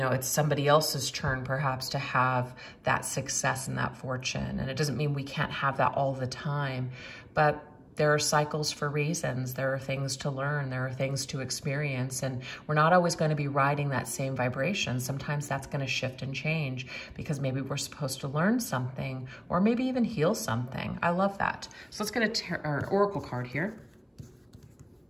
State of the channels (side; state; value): both; identical; correlation 1.00